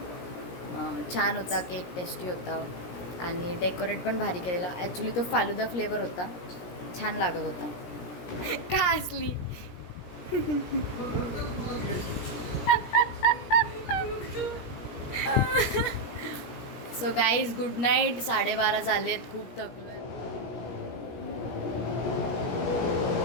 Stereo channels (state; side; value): late; right; 17 ms